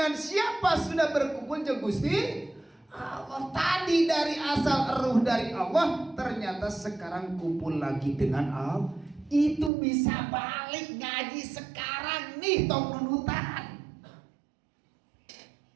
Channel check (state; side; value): drops out; left; at 9.7 s